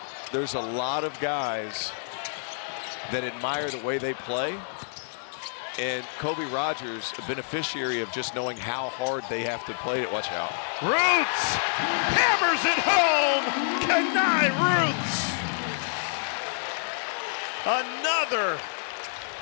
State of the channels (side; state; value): right; silent; digital silence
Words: there's a lot of guys that admire the way they play. And Kobe Rogers, a beneficiary of just knowing how hard they have to play it. Watch out. Rooths hammers it home. Khani Rooths. Another